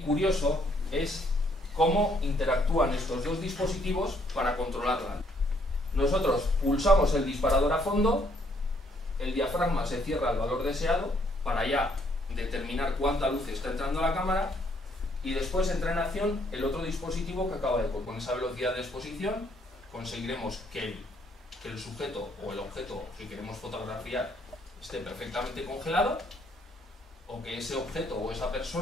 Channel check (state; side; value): normal; both; correlation 0.68